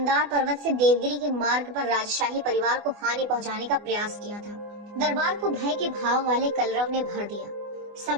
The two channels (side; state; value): left; late; 24 ms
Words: पर्वत से देवगिरी के मार्ग पर राजशाही परिवार को हानि पहुंचाने का प्रयास किया था। दरबार को भय के भाव वाले कलरव ने भर दिया।